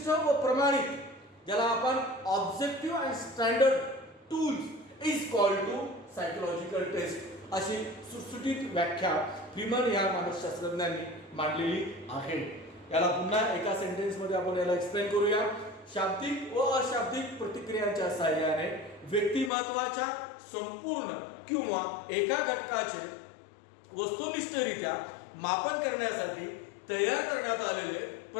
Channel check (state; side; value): drops out; right; at 19.5 s